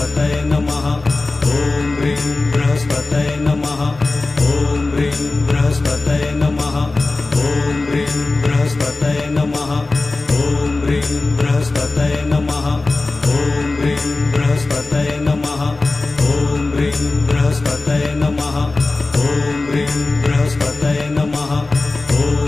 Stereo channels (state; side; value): quieter; right; 3.3 dB